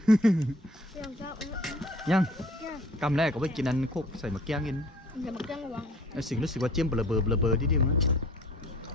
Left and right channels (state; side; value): normal; both; correlation 0.51